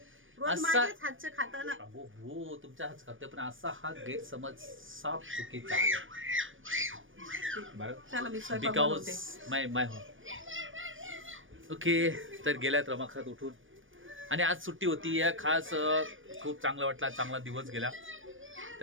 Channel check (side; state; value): left; late; 0.57 ms